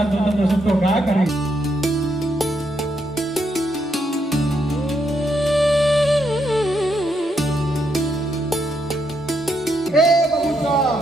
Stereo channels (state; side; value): normal; both; correlation 0.78